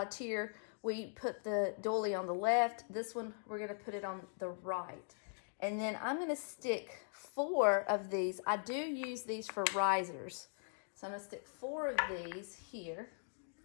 tier, we put the doily on the left. This one, we're going to put it on the right. And then I'm going to stick 4 of these. I do use these for risers. So I'm going to stick 4 of these here.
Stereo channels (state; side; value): silent; right; digital silence